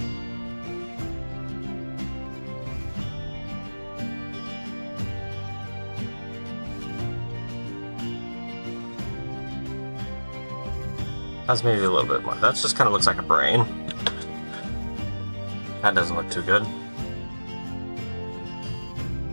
That's maybe a little bit more. That just kind of looks like a brain. That doesn't look too good.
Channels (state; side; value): inverted; both; correlation -1.00